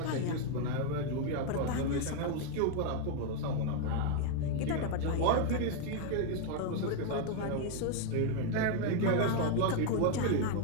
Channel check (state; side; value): different; both; correlation 0.01